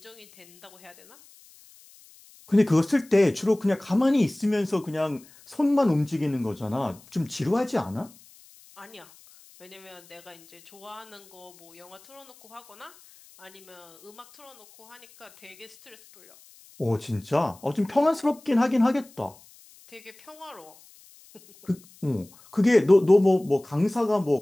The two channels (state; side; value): noise; left; hiss, 25 dB below the sound